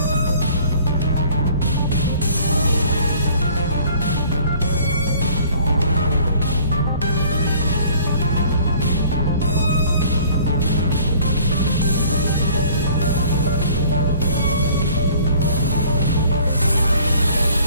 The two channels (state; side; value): inverted; both; correlation -0.54